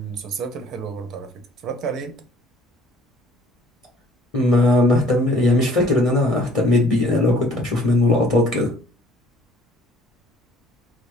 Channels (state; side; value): normal; both; correlation 0.56